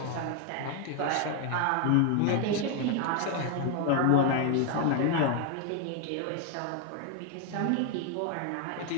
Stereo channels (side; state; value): both; different; correlation 0.01